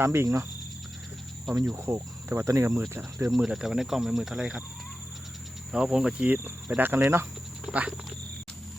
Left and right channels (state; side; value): normal; both; correlation 0.93